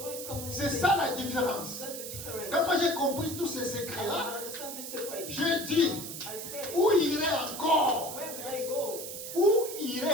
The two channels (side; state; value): right; noise; hiss, 8 dB below the sound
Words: coming with C'est peace. ça la différence. That's the difference. Quand moi j'ai compris tous ces secrets-là, I understand this secret. j'ai dit, I said, où irait encore? where will I go? Où irait